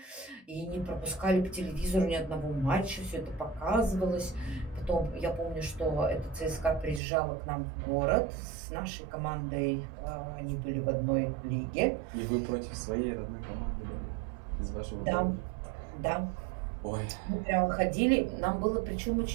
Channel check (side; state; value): left; drops out; at 7.0 s